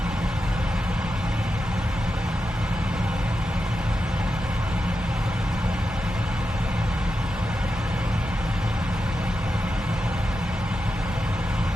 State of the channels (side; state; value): both; normal; correlation 0.89